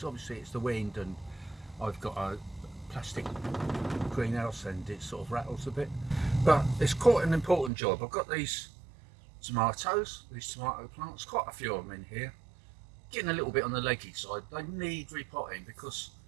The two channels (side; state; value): left; drops out; at 7.7 s